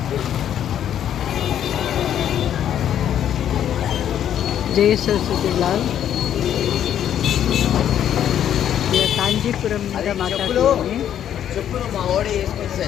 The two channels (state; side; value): quieter; right; 10.1 dB